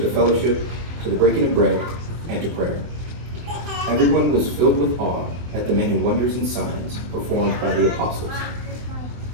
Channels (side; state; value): left; late; 24 ms